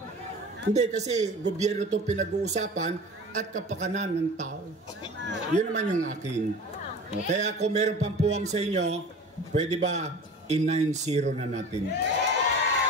Hindi, kasi gobyerno to pinag-uusapan at kapakanan ng tao. Yun naman yung akin. Kaya kung meron pang puwang sa inyo, pwede ba i-9-0 na natin?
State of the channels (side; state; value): both; normal; correlation 0.38